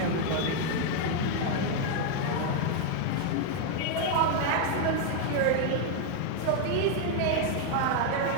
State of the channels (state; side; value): different; both; correlation 0.00